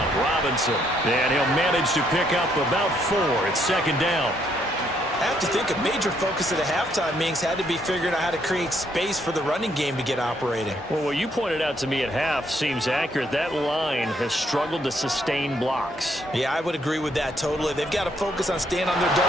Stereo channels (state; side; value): normal; both; correlation 0.72